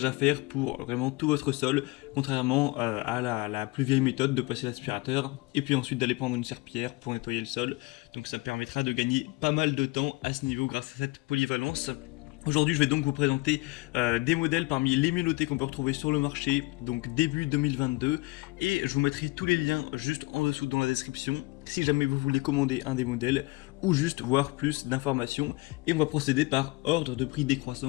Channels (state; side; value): quieter; right; 23.7 dB